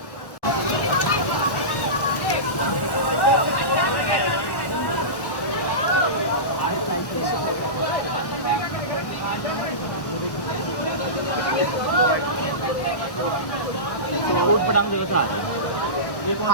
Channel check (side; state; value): right; late; 1.1 ms